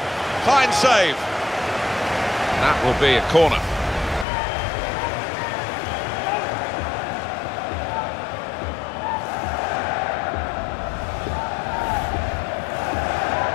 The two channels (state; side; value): drops out; right; at 4.2 s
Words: Fine save. That will be a corner.